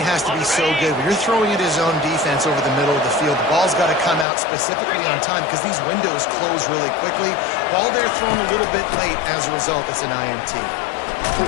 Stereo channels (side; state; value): right; drops out; at 4.2 s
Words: has to be so good. When you're throwing at his own defense over the middle of the field, the ball's got to come out specifically on time because these windows close really quickly. Ball there thrown a little bit late. As a result, it's an INT.